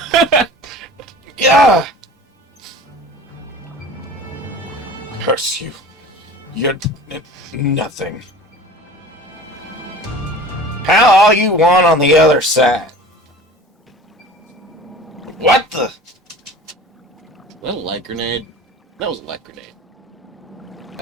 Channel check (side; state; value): both; normal; correlation 0.40